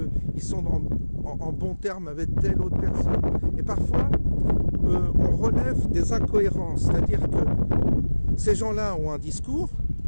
sont en bon terme avec telle autre personne. Et parfois, on relève des incohérences, c'est-à-dire que ces gens-là ont un discours,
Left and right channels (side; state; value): both; inverted; correlation -1.00